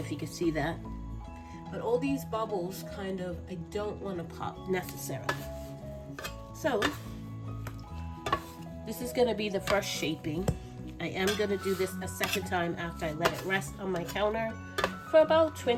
you can see that, but all these bubbles kind of, I don't want to pop necessarily. So this is going to be the first shaping. I am going to do this a second time after I let it rest on my counter for about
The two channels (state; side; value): identical; both; correlation 1.00